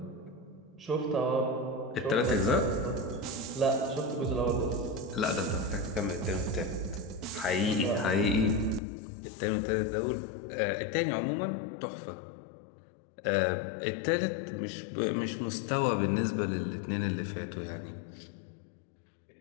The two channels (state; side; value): drops out; right; at 8.8 s